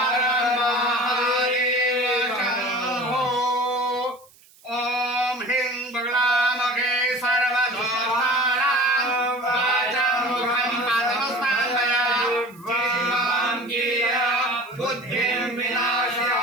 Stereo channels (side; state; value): right; noise; hiss, 28 dB below the sound